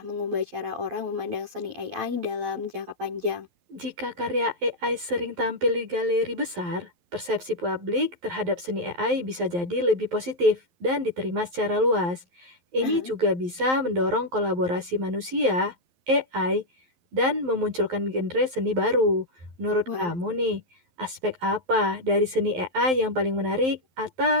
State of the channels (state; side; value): late; left; 11 ms